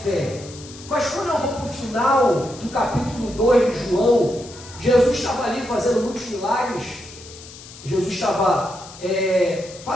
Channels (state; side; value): noise; left; hiss, 17 dB below the sound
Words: fé. Mas quando eu vou para o final do capítulo 2 de João, Jesus estava ali fazendo muitos milagres, Jesus estava